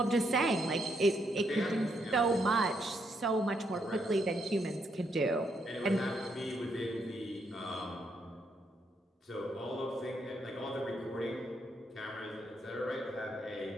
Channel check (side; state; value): both; normal; correlation 0.76